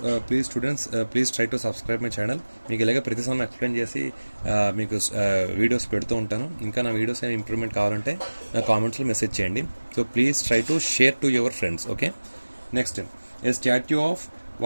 please students please try to subscribe my channel. మీకు ఇలాగే ప్రతి సమ్ ఎక్స్ప్లెయిన్ చేసి మీకు వీడియోస్ పెడుతూ ఉంటాను. ఇంకా నా వీడియోస్ ఏమైనా ఇంప్రూవ్మెంట్ కావాలంటే నా కామెంట్స్లో మెసేజ్ చేయండి. So please try to share to your friends. Okay, next a statue of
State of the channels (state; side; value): inverted; both; correlation -1.00